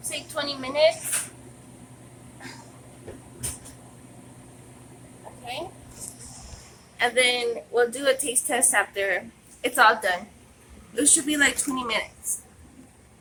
say 20 minutes. Okay. And then we'll do a taste test after it's all done. It should be like 20 minutes.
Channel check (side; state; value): both; identical; correlation 1.00